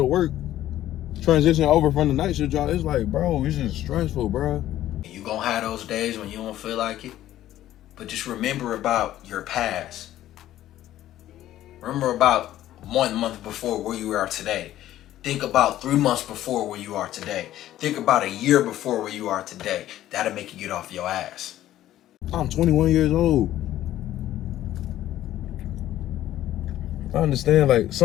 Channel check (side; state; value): right; quieter; 13.3 dB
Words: work. Transition over from the night shift job. It's like, bro, it's just stressful, bro. You gonna have those days when you don't feel like it. But just remember about your past. Remember about 1 month before where you are today. Think about 3 months before where you are today. Think about a year before where you are today. That'll make you get off your ass. I'm 21 years old. I understand, like,